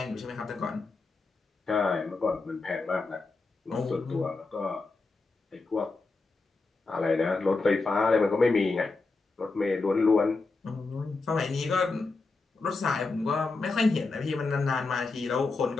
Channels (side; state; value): right; quieter; 3.8 dB